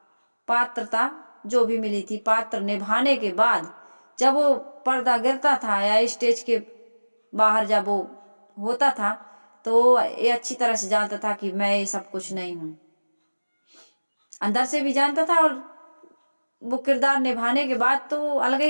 पात्रता जो भी मिली थी, पात्र निभाने के बाद जब वो पर्दा गिरता था या स्टेज के बाहर जब वो होता था, तो ये अच्छी तरह से जानता था कि मैं ये सब कुछ नहीं हूं। अंदर से भी जानता था, और वो किरदार निभाने के बाद तो अलग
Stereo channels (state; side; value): inverted; both; correlation -1.00